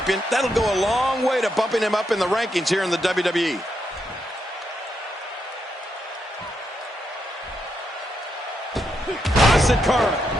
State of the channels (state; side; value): normal; both; correlation 0.81